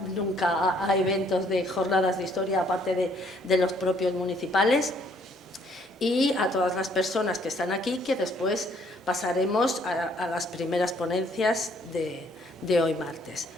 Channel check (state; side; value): normal; both; correlation 0.64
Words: nunca a eventos de jornadas de historia, aparte de los propios municipales. Y a todas las personas que están aquí, que después pasaremos a las primeras ponencias de hoy martes.